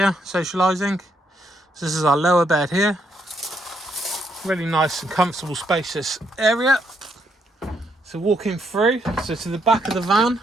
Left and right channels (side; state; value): both; normal; correlation 0.75